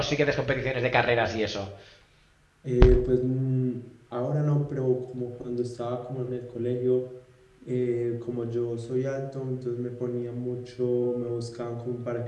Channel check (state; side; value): identical; both; correlation 1.00